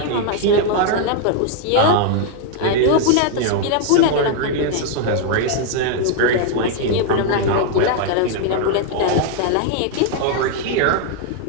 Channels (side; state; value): both; different; correlation 0.00